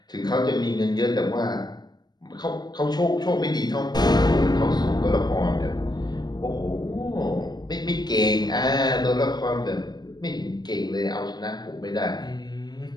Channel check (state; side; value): late; right; 0.20 ms